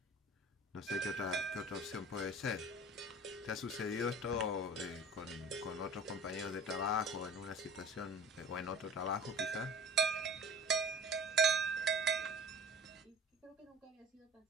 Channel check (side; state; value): both; normal; correlation 0.42